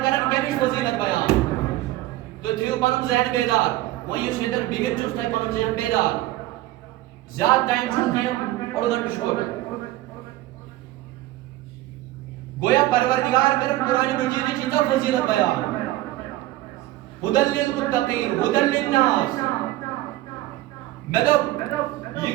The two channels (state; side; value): quieter; left; 16.2 dB